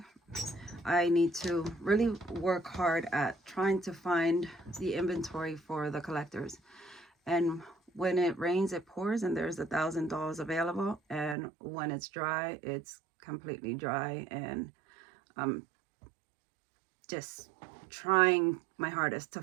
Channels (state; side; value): drops out; left; at 11.4 s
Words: I need to really work hard at trying to find the inventory for the collectors. And when it rains, it pours, and there's $1,000 available. And when it's dry, it's completely dry. And I'm just trying my hardest to